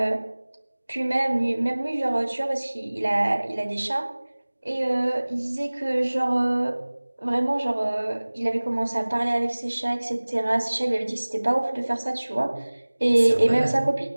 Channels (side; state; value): both; inverted; correlation -1.00